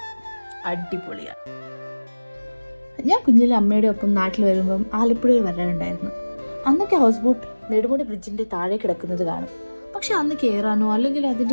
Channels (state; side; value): inverted; both; correlation -1.00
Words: അടിപൊളിയാണ്. ഞാൻ കുഞ്ഞിലെ അമ്മയുടെ ഒപ്പം നാട്ടിൽ വരുമ്പം ആലപ്പുഴയിൽ വരാറുണ്ടായിരുന്നു. അന്നൊക്കെ ഹൗസ് ബോട്ട് നെടുമുടി ബ്രിഡ്ജിന്റെ താഴെ കിടക്കുന്നത് കാണും. പക്ഷെ അന്ന് കയറാനോ അല്ലെങ്കിൽ